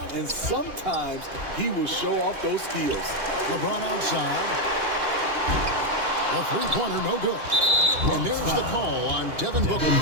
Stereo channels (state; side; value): late; left; 2.8 ms